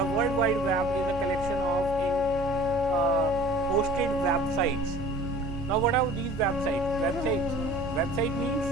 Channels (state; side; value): normal; both; correlation 0.46